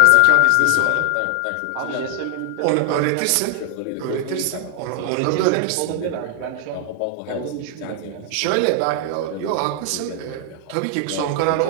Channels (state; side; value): different; both; correlation 0.00